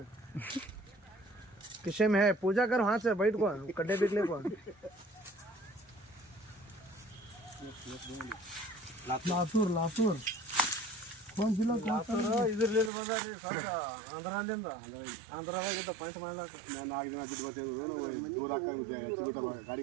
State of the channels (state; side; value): drops out; left; at 12.9 s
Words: किसे में है पूजा कर हाथ से बैठ को कड्डे बिकले को लातूर लातूर कौन जिला लातूर ಇದರಲ್ಲಿ ಬಂದಾರಿ ಸಾಕ ಆಂಧ್ರದಿಂದ ಆಂಧ್ರದಾಗ ಪಾಯಿಂಟ್ ಮಾಡಲಾಕ ನಾನು 4 ದಿನ ಬಿಟ್ಟು ಬರ್ತೇನೆ ದೂರ ಹಾಕಂಗೆ